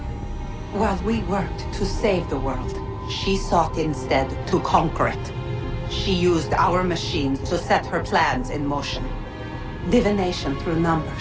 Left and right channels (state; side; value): identical; both; correlation 1.00